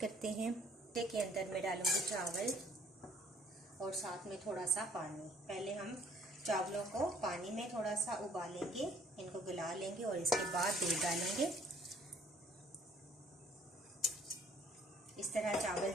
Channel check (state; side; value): normal; both; correlation 0.58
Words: हैं। के अंदर मैं डालूंगी चावल और साथ में थोड़ा सा पानी। पहले हम चावलों को पानी में थोड़ा सा उबालेंगे, इनको गला लेंगे और इसके बाद दूध डालेंगे। इस तरह चावल